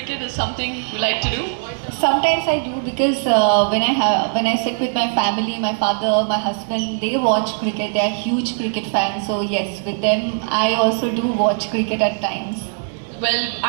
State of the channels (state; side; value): silent; left; 59 dB below the other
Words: Is something you like to do? Sometimes I do, because when I sit with my family, my father, my husband, they watch cricket. They are huge cricket fans. So yes, with them I also do watch cricket at times. Well,